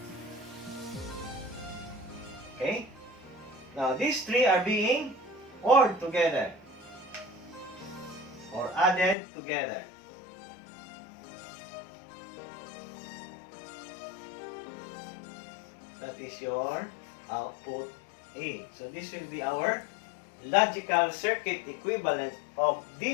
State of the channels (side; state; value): right; drops out; at 9.2 s